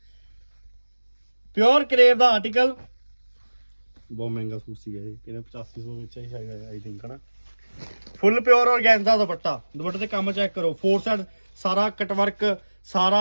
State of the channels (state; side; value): inverted; both; correlation -1.00